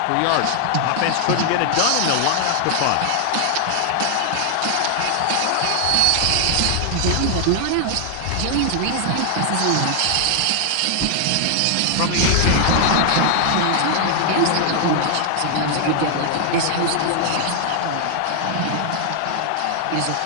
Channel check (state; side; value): different; both; correlation 0.00